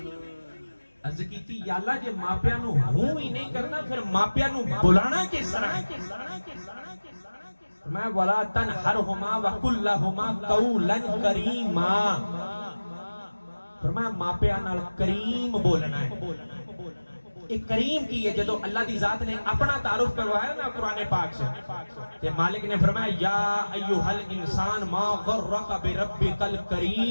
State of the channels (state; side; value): inverted; both; correlation -1.00